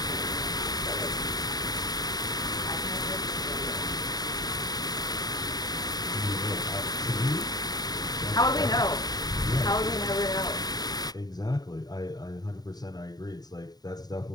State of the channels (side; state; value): right; late; 0.19 ms